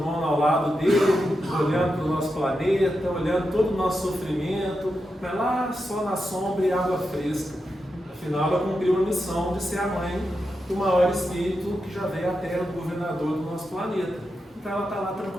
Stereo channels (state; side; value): normal; both; correlation 0.88